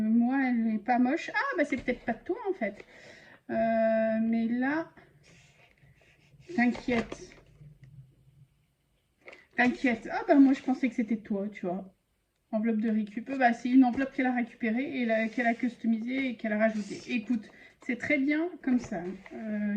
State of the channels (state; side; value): identical; both; correlation 1.00